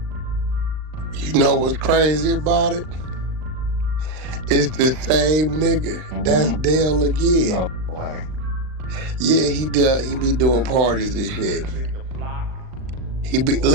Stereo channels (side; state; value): left; late; 39 ms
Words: You know what's crazy about it? It's the same nigga. Mm-hmm. That's Dale again. No way. Yeah, he be doing parties and shit.